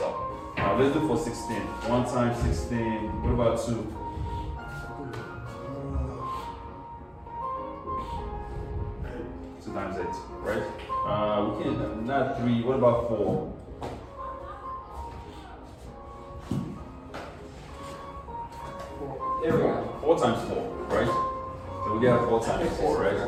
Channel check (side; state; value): both; identical; correlation 1.00